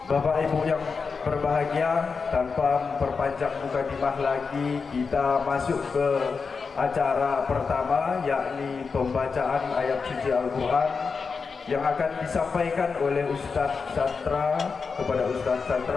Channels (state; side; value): quieter; right; 5.0 dB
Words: Bapak Ibu yang berbahagia, tanpa memperpanjang mukadimah lagi, kita masuk ke acara pertama, yakni pembacaan ayat suci Al-Quran yang akan disampaikan oleh Ustadz Satra. Kepada Ustadz